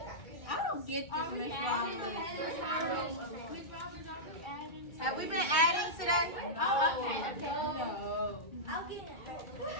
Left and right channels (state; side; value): late; right; 2.2 ms